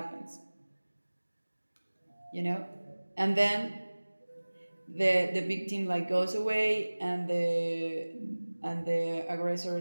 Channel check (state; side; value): inverted; both; correlation -1.00